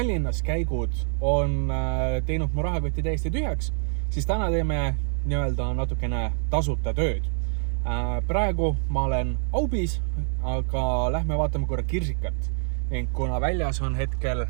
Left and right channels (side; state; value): left; silent; digital silence